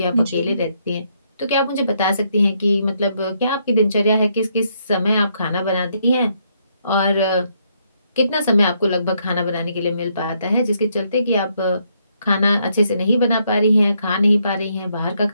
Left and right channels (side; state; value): both; inverted; correlation -0.74